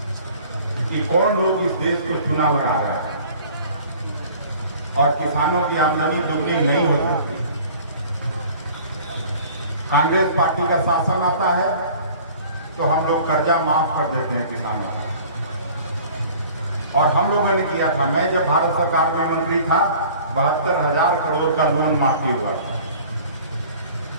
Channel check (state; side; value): inverted; both; correlation -0.48